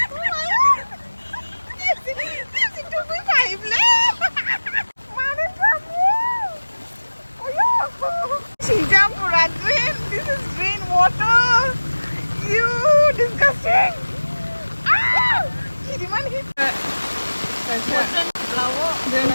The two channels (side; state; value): both; inverted; correlation -1.00